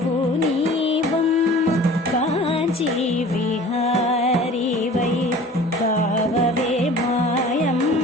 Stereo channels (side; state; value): both; normal; correlation 0.44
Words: నీవమ్మ. కాంచీ విహారీ వై కావవే